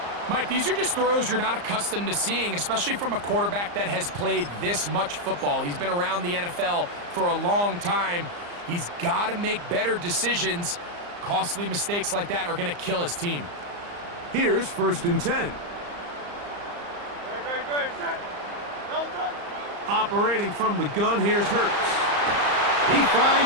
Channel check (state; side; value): late; left; 34 ms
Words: Mike, these are just throws you're not accustomed to seeing, especially from a quarterback that has played this much football. He's been around the NFL for a long time. He's got to make better decisions. Costly mistakes like that are going to kill his team. Here's 1st and 10. Great. Set. No touch. Operating from the gun, here's Hurts. He